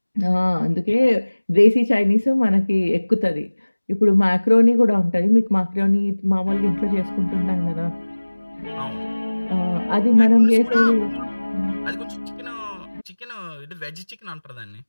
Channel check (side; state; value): both; inverted; correlation -1.00